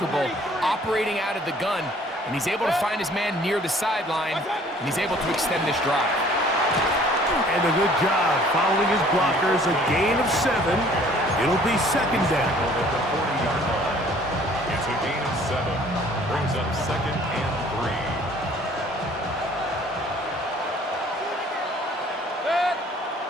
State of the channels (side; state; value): both; normal; correlation 0.55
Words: operating out of the gun, and he's able to find his man near the sideline, and he's able to extend this drive. And a good job following his blockers. A gain of 7. It'll be 2nd down. It's a gain of 7. Brings up 2nd and 3.